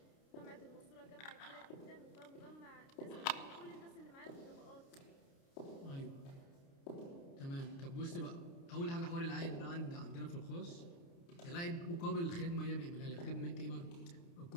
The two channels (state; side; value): late; right; 29 ms